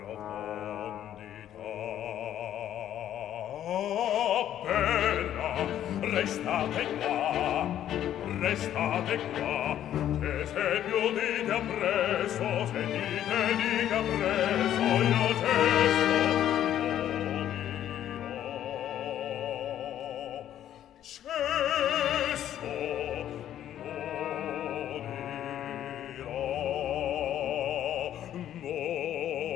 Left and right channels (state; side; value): quieter; right; 11.2 dB